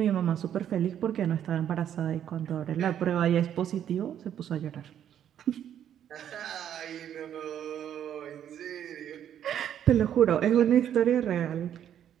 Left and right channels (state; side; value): quieter; left; 9.9 dB